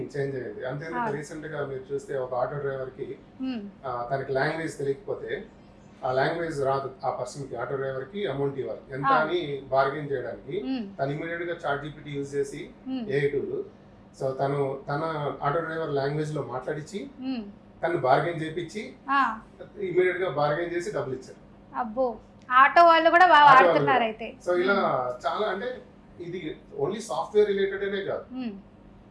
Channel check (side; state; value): both; identical; correlation 1.00